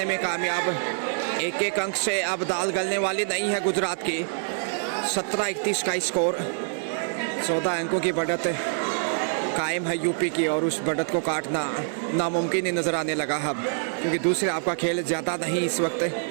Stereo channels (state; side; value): silent; left; 61 dB below the other